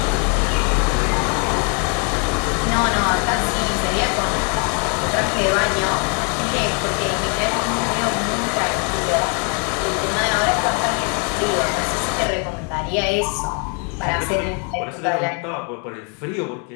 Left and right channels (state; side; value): quieter; right; 38.1 dB